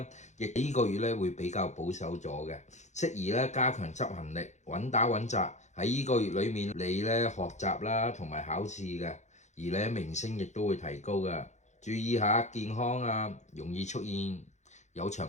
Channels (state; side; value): late; right; 0.34 ms